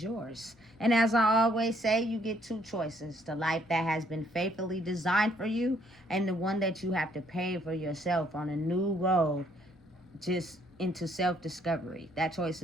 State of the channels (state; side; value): normal; both; correlation 0.67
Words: yours. And as I always say, you get two choices. The life that has been faithfully designed for you, and the one that you have to pay for yourself on a new road, just into self-discovery. That choice